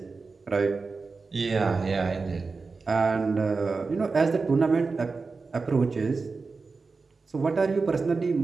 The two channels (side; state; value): left; quieter; 4.3 dB